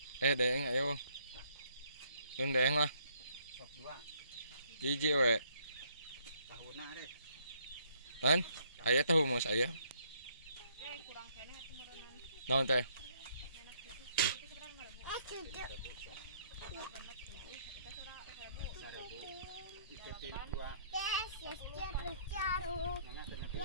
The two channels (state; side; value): inverted; both; correlation -0.67